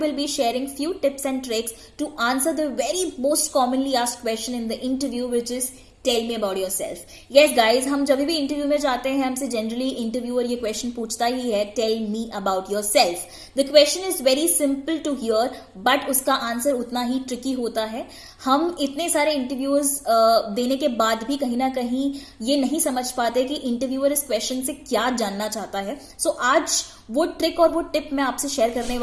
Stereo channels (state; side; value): identical; both; correlation 1.00